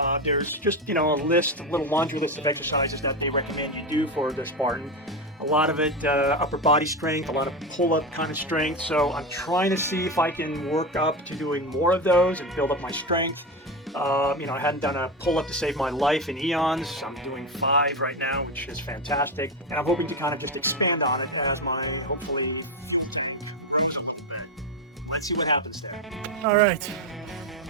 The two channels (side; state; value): both; normal; correlation 0.16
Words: There's just, a little laundry list of exercises that they recommend you do for the Spartan. A lot of it upper body strength, a lot of pull-up kind of strength. So I'm trying to see if I can work up to doing more of those and build up my strength. I hadn't done a pull-up to save my life in eons. I'm doing 5 right now, which is fantastic. And I'm hoping to kind of just expand on it as my, hopefully, let's see what happens there. All right,